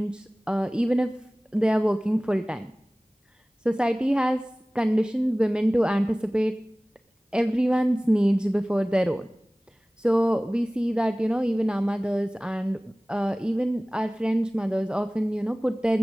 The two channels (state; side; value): normal; both; correlation 0.98